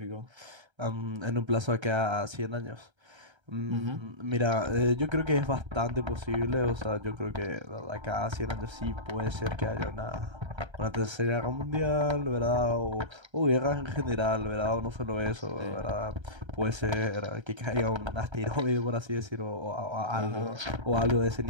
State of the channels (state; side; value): late; left; 1.3 ms